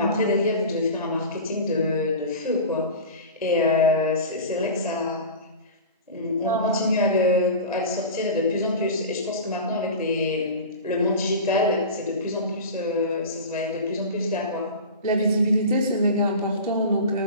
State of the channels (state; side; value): inverted; both; correlation -0.31